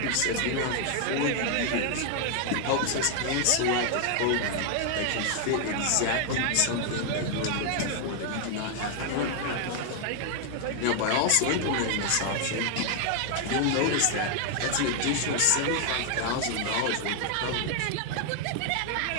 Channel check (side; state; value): both; different; correlation 0.00